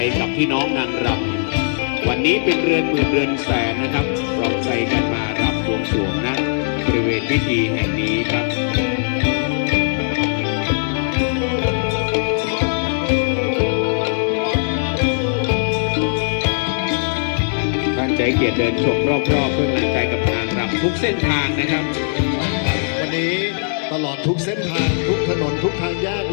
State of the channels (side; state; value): right; silent; digital silence